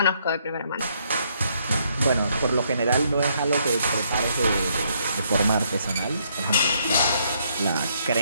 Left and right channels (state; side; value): inverted; both; correlation -0.71